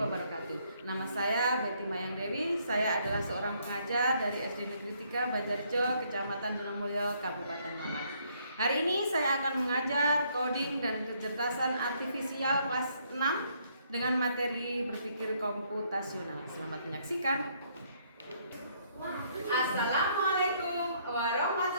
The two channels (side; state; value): both; inverted; correlation -0.68